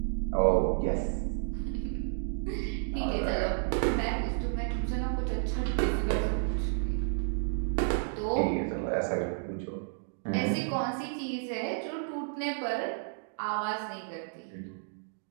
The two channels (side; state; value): left; silent; digital silence